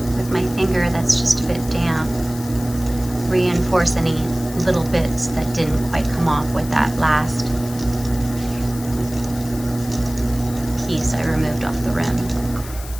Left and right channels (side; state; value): left; noise; hiss, 15 dB below the sound